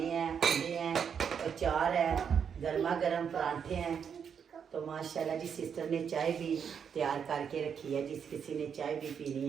हैं अंडे हैं अचार है गर्मा गर्म परांठे हैं तो माशाल्लाह जी सिस्टर ने चाय भी तैयार करके रखी है जिस किसी ने चाय भी पीनी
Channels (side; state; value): left; quieter; 7.3 dB